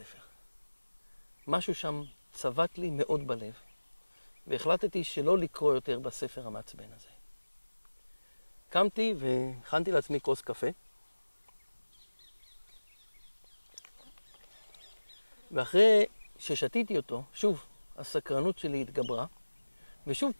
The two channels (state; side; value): inverted; both; correlation -1.00